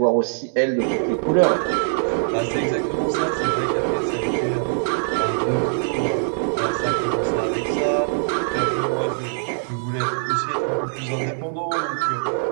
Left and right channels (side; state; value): left; silent; 64 dB below the other